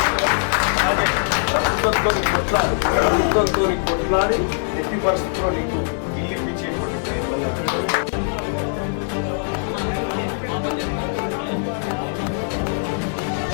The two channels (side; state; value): right; silent; digital silence